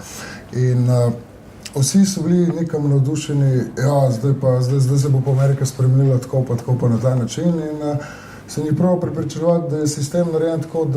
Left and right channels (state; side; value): identical; both; correlation 1.00